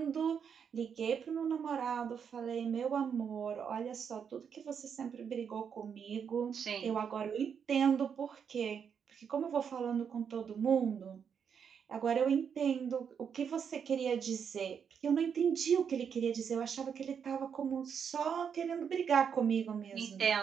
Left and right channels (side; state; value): left; quieter; 7.2 dB